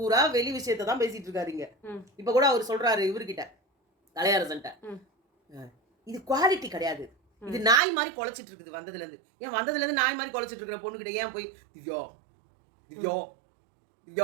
வெளி விஷயத்த தான் பேசிட்டு இருக்காரு இங்க. ம். இப்ப கூட அவரு சொல்றாரு இவர்கிட்ட, கலையரசன்ட்ட. ம். இது குவாலிட்டி கிடையாது. இது ம். நாய் மாரி கொலைச்சிட்டு இருக்குது வந்ததுலேருந்து. ஏன் வந்ததுலேருந்து நாய் மாரி கொலைச்சிட்டு இருக்கிற பொண்ணுகிட்ட ஏன் போய் திவ்யா, திவ்யா,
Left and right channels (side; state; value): left; drops out; at 7.8 s